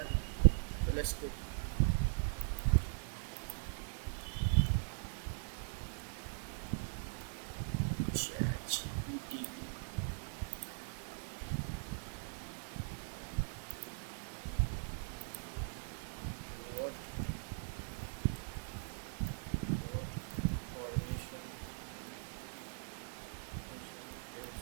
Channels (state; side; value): silent; left; 51 dB below the other